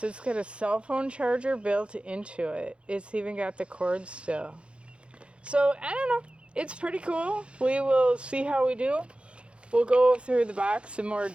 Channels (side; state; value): left; late; 0.058 ms